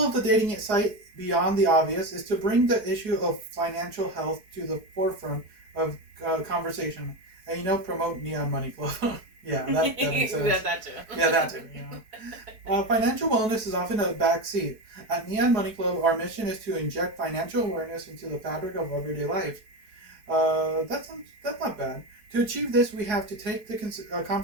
of the dating site, beyond the obvious, is to bring the issue of financial health to the forefront of conversation. And, promote Neon Money Club. Yeah, that makes sense. That too. Yeah, that too. Financial wellness is often a backseat. At Neon Money Club, our mission is to inject financial awareness into the fabric of everyday life. That's not bad. To achieve this, we have to take the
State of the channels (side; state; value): left; late; 4.6 ms